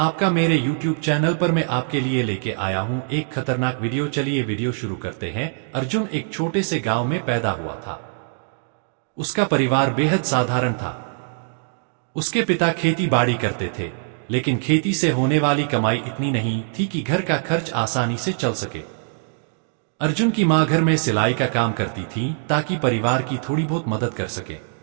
मेरे YouTube चैनल पर। मैं आपके लिए लेके आया हूँ एक खतरनाक वीडियो। चलिए वीडियो शुरू करते हैं। अर्जुन एक छोटे से गांव में पैदा हुआ था। उसका परिवार बेहद साधारण था। उसके पिता खेती बाड़ी करते थे, लेकिन खेती से होने वाली कमाई इतनी नहीं थी कि घर का खर्च आसानी से चल सके। अर्जुन की माँ घर में सिलाई का काम करती थी ताकि परिवार की थोड़ी बहुत मदद कर सके।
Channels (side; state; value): left; silent; digital silence